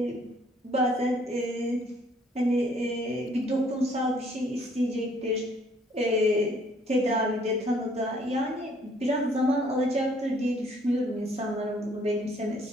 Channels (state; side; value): normal; both; correlation 0.62